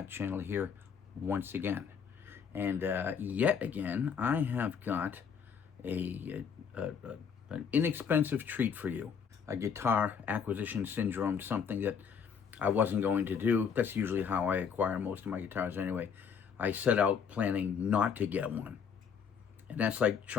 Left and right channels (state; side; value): quieter; right; 6.8 dB